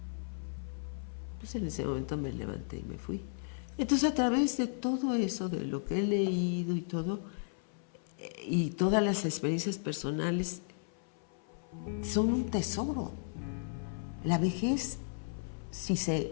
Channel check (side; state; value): right; silent; 55 dB below the other